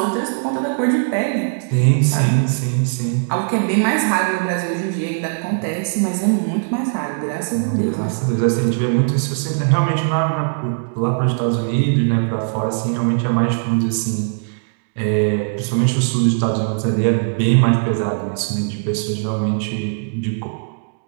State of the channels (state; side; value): silent; left; digital silence